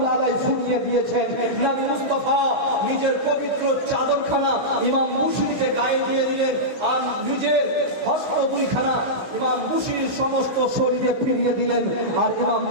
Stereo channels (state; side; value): late; left; 16 ms